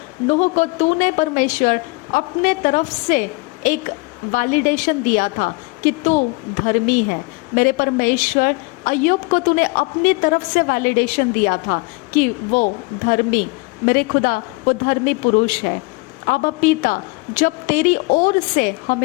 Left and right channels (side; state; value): right; quieter; 27.7 dB